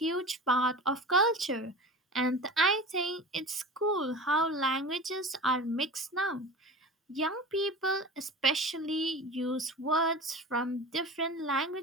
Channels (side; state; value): both; normal; correlation 0.33